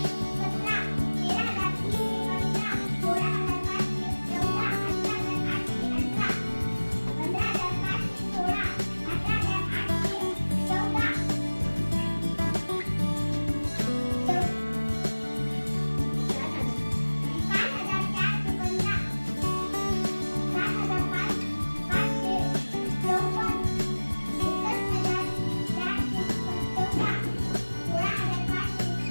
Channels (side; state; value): both; inverted; correlation -1.00